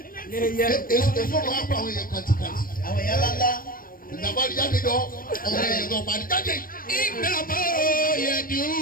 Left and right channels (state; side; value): late; right; 0.41 ms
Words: èso máa ń pa àwọn èèyàn kàntìkàntì. àwọn èèyàn ńláńlá. ìdàgbà jáde jọ ọ̀rẹ́ èèyàn tó parí jáde. Innama yad'u